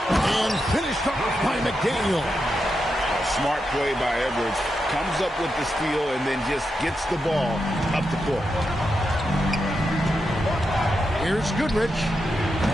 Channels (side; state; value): both; normal; correlation 0.86